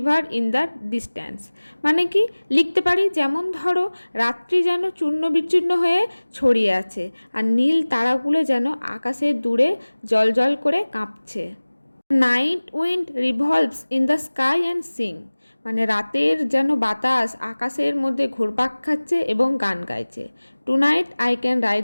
in the distance. মানে কি লিখতে পারি, যেমন ধরো রাত্রি যেন চূর্ণ বিচ্ছিন্ন হয়ে ছড়িয়ে আছে আর নীল তারাগুলো যেন আকাশে দূরে জল করে কাঁপছে। Night wind revolves in the sky and sing, মানে রাতের যেন বাতাস আকাশের মধ্যে ঘুরপাক খাচ্ছে এবং গান গাইছে। Tonight I can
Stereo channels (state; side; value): inverted; both; correlation -1.00